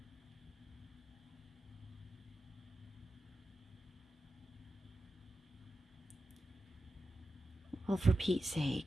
Well, for Pete's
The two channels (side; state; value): both; normal; correlation 0.91